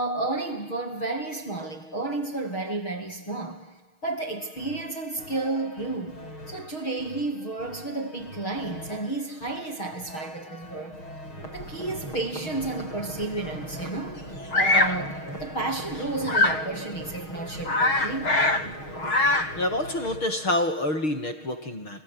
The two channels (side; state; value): right; late; 6.4 ms